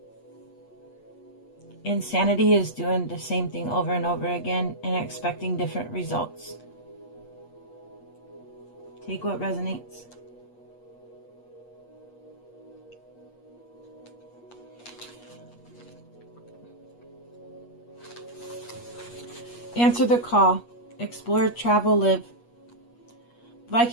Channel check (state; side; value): late; right; 8.4 ms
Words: Insanity is doing the same thing over and over again and expecting different results. Take what resonates. Answer the call. Explore, travel, live.